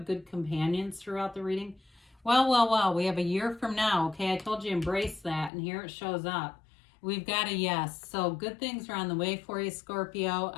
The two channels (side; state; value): right; drops out; at 5.5 s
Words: good companions throughout the reading. Well, we have a year from now. Okay, I told you embrace that, and here it shows up. We've got a yes. So good things are on the way for you, Scorpio.